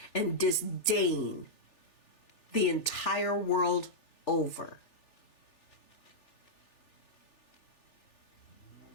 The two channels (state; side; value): late; right; 3.4 ms